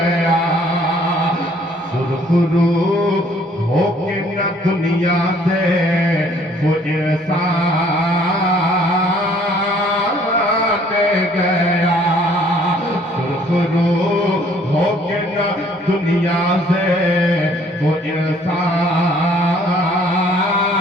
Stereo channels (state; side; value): normal; both; correlation 0.60